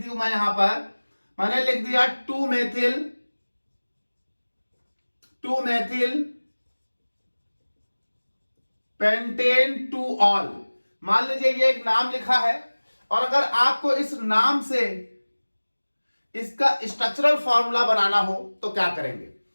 मैं यहां पर, मैंने लिख दिया 2 मेथिल पेंटेन 2 ऑल। मान लीजिए ये एक नाम लिखा है, और अगर आपको इस नाम से इसका स्ट्रक्चरल फॉर्मूला बनाना हो तो क्या करेंगे।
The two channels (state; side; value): inverted; both; correlation -1.00